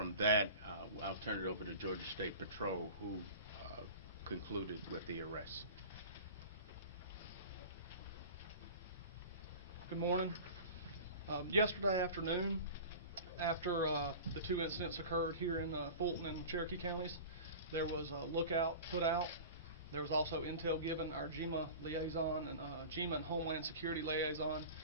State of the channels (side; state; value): both; inverted; correlation -0.36